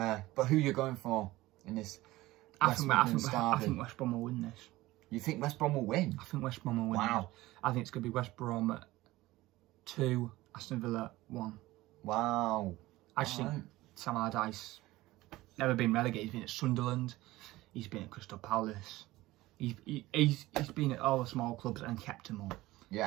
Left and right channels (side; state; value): left; quieter; 18.1 dB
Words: who are you going for in this? I think West Brom will win this. You think West Brom will win? I think West Brom will win. Wow. I think it's going to be West Brom 2, Aston Villa 1. Wow. I just think Sam Allardyce, never been relegated. He's been at Sunderland. He's been at Crystal Palace. He's been at all the small clubs and kept them up.